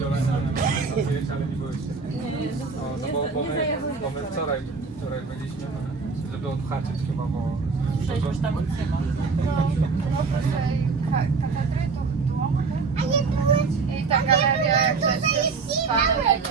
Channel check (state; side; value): quieter; left; 4.7 dB